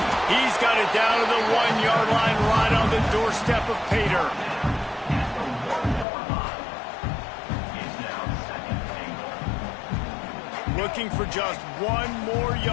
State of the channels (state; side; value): drops out; right; at 6.1 s